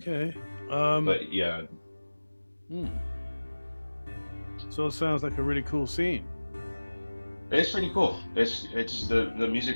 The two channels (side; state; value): both; inverted; correlation -1.00